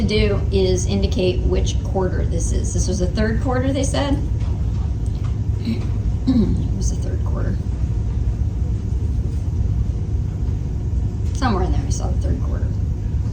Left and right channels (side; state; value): both; identical; correlation 1.00